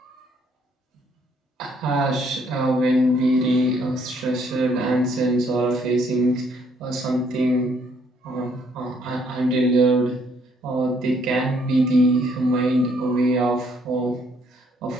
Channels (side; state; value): both; normal; correlation 0.67